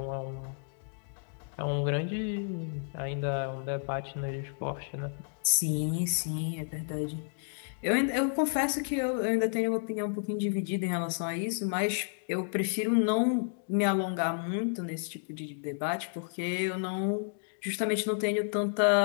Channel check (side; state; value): right; silent; digital silence